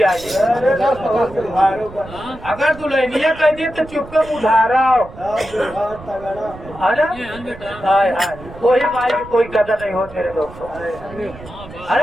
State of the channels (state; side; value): noise; right; rumble, 17 dB below the sound